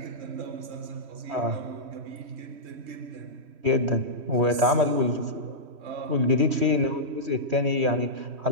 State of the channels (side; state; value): left; late; 3.1 ms